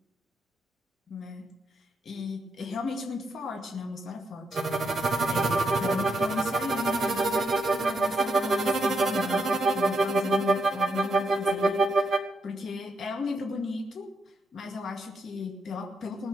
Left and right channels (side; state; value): both; normal; correlation 0.80